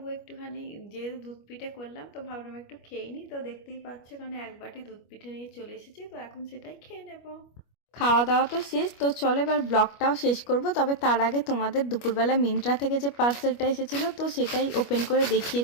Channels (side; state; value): right; late; 25 ms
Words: একটুখানি যেহেতু দুধ পিঠে করলাম তো ভাবলাম একটু খেয়ে নিই। তো দেখতেই পাচ্ছ এখানে 1 বাটি দুধ পিঠে নিয়ে চলে এসেছি, তো এখন সেটাই খেয়ে নেব। খাওয়া দাওয়া তো শেষ, তো চলো এবার ব্লগটাও শেষ করব। তবে তার আগে তোমাদের দুপুরবেলা মিন্ত্রা থেকে যে পার্সেলটা এসেছিলো তো সেটাই ওপেন করে দেখিয়ে